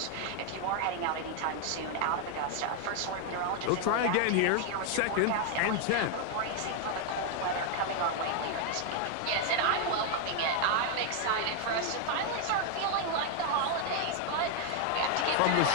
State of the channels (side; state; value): both; different; correlation 0.01